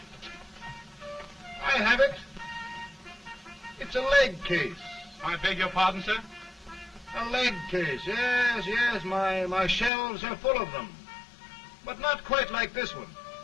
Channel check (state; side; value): drops out; right; at 9.9 s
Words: I have it. It's a leg case. I beg your pardon, sir? A leg case, yes. My shelves are full of them. But not quite like this one.